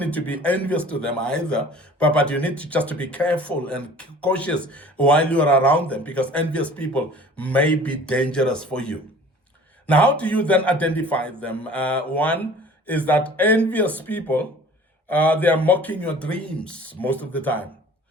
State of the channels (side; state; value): both; normal; correlation 0.47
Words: to be envious to them either. But you need to just to be careful and cautious while you are around them, because envious people may be dangerous for you. Now, how do you then identify them? One is that envious people, they are mocking your dreams most of the time.